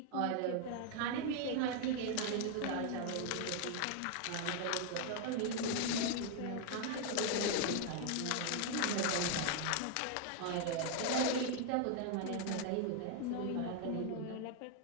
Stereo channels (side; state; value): both; different; correlation 0.00